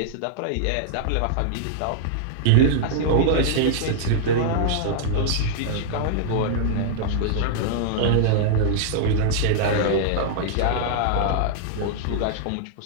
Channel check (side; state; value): both; different; correlation -0.01